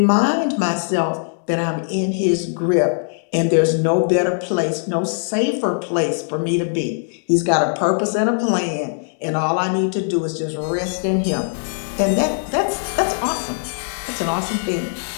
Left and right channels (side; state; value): right; silent; digital silence